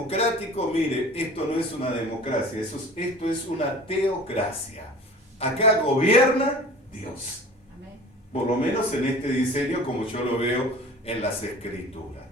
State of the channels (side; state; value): both; normal; correlation 0.42